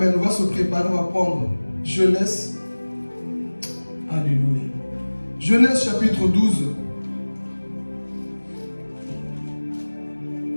On va se préparer, on va prendre Genèse. Alléluia. Genèse chapitre 12.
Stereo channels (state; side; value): inverted; both; correlation -1.00